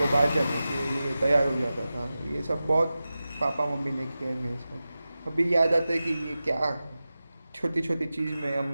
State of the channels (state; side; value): inverted; both; correlation -0.94